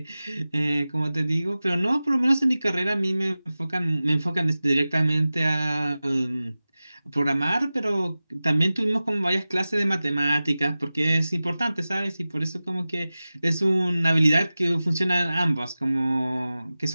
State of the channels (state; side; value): inverted; both; correlation -0.96